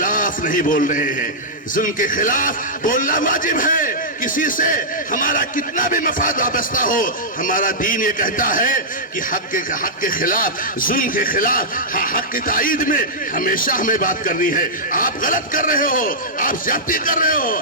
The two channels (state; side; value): normal; both; correlation -0.12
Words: نہیں بول رہے ہیں. ظلم کے خلاف بولنا واجب ہے. کسی سے ہمارا کتنا بھی مفاد وابستہ ہو، ہمارا دین یہ کہتا ہے کہ حق کے خلاف، ظلم کے خلاف، حق کی تائید میں ہمیشہ ہمیں بات کرنی ہے. آپ غلط کر رہے ہو، آپ زیادتی کر رہے ہو،